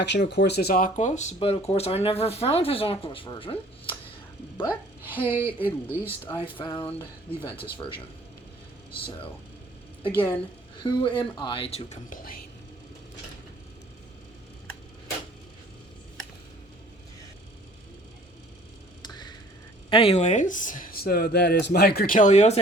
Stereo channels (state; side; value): normal; both; correlation 0.54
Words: of course, is Aquos, but, of course, I never found his Aquos version. But, hey, at least I found the Ventus version. So, again, who am I to complain? Anyways, so that is my Cornelius. I